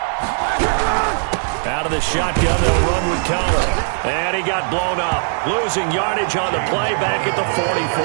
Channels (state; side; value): silent; left; digital silence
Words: Out of the shotgun, they'll run with Conner. And he got blown up. Losing yardage on the play back at the